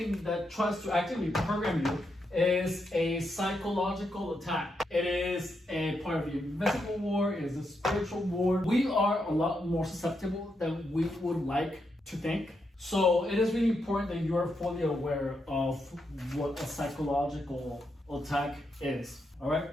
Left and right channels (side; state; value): both; normal; correlation 0.82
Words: that tries to actively program you is a psychological attack. It is a part of the invisible war. It is a spiritual war. We are a lot more susceptible than we would like to think. So it is really important that you are fully aware of what a psychological attack is. All right.